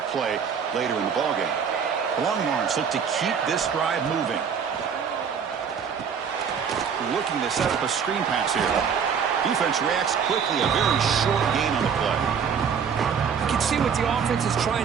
play later in the ballgame. The Longhorns look to keep this drive moving. Looking to set up a screen pass here. Defense reacts quickly. A very short gain on the play. You can see what the offense is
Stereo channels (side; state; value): left; quieter; 6.9 dB